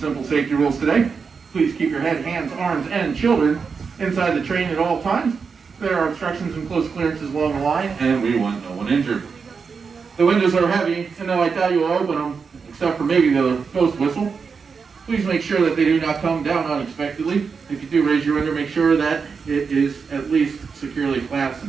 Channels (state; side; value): quieter; left; 5.5 dB